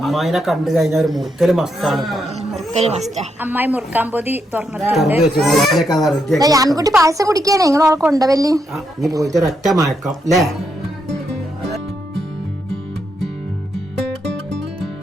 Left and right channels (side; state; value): both; normal; correlation 0.81